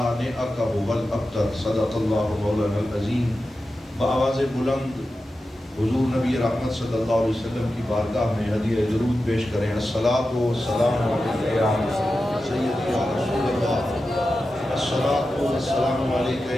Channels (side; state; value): both; normal; correlation 0.92